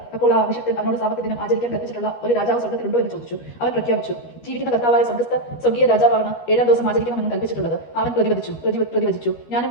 അപ്പോൾ ആ അഭിഷക്തൻ അവനോട് സാബത്ത് ദിനം ആചരിക്കാൻ കൽപ്പിച്ചിട്ടുള്ള ഒരു രാജാവ് സ്വർഗ്ഗത്തിലുണ്ടോ എന്ന് ചോദിച്ചു. അവൻ പ്രഖ്യാപിച്ചു, ജീവിക്കുന്ന കർത്താവായ സ്വർഗീയ രാജാവാണ് 7-ാം ദിവസം ആചരിക്കണമെന്ന് കൽപ്പിച്ചിട്ടുള്ളത്. അവൻ പ്രതിവചിച്ചു, ഞാനും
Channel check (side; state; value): right; late; 13 ms